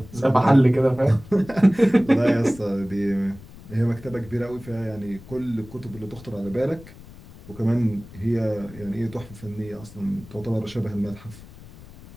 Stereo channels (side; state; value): left; noise; rumble, 19 dB below the sound